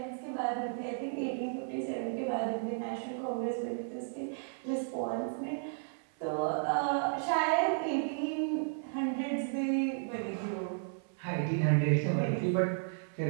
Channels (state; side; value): silent; left; 55 dB below the other